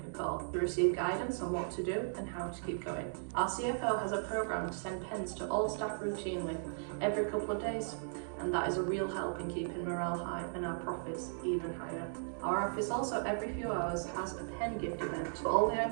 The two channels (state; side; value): silent; left; digital silence